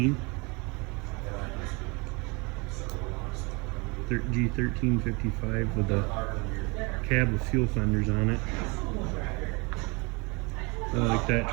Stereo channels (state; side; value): quieter; left; 28.3 dB